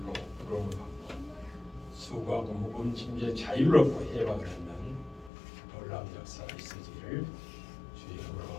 부름을 받고 수고하고 무거운 짐에 자유를 얻고 해방을 하는 놀라운 역사가 있으기를 주의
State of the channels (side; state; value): right; drops out; at 5.3 s